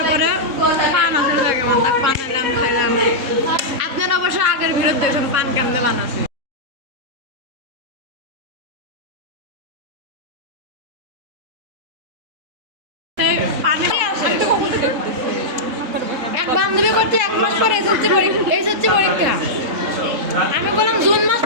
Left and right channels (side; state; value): left; late; 3.8 ms